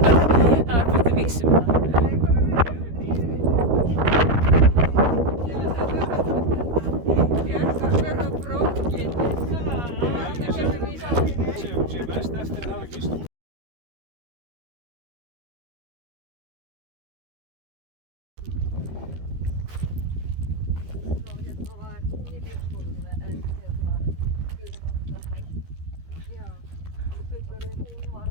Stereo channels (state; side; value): late; left; 13 ms